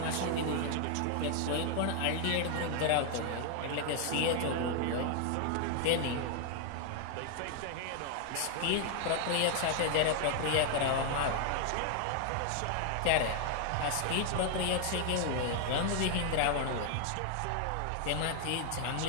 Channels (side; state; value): both; different; correlation 0.00